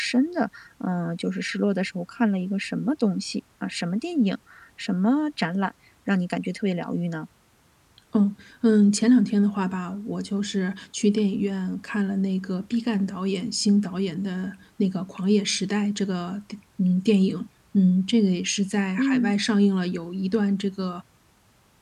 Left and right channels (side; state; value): both; identical; correlation 1.00